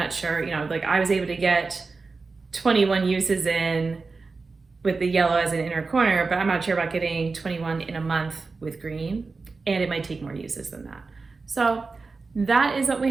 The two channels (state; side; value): quieter; left; 4.1 dB